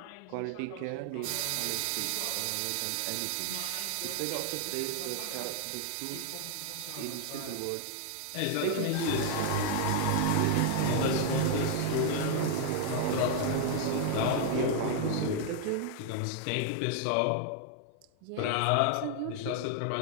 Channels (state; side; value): different; both; correlation 0.00